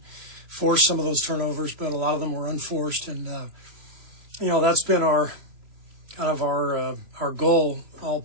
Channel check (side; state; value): left; late; 3.0 ms